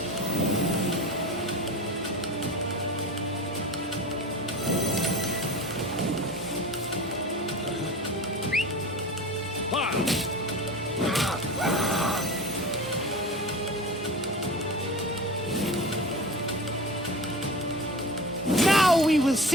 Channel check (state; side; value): normal; both; correlation 0.33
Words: Now we will